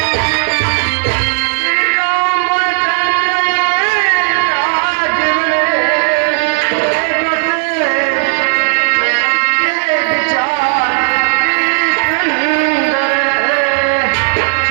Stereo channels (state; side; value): silent; left; digital silence